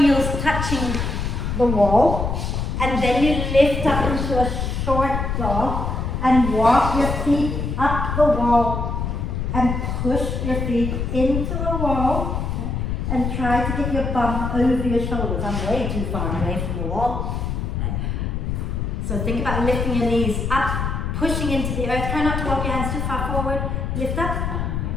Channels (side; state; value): left; noise; rumble, 2 dB below the sound